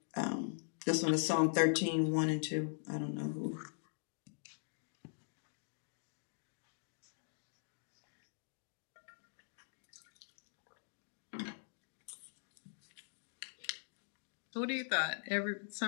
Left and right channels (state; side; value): silent; right; digital silence